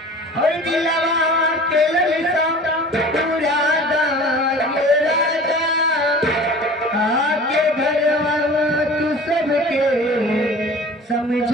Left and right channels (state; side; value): normal; both; correlation 0.42